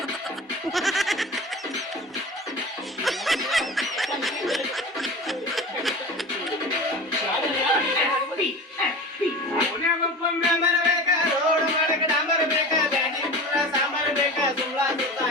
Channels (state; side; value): normal; both; correlation 0.33